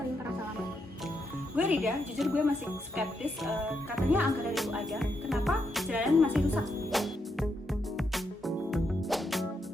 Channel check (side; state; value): both; normal; correlation 0.80